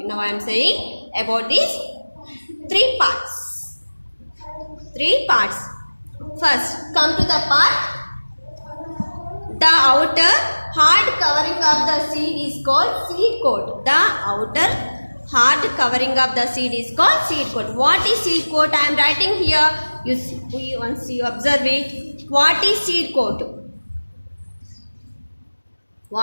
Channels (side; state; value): both; inverted; correlation -1.00